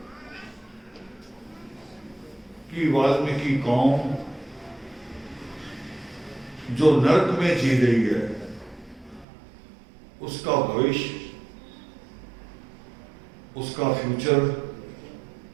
कि वाल्मीकि कौम जो नर्क में जी रही है, उसका भविष्य, उसका फ्यूचर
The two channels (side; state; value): left; drops out; at 9.2 s